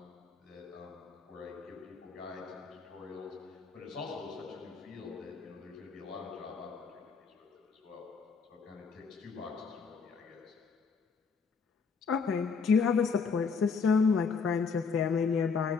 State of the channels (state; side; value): quieter; right; 5.3 dB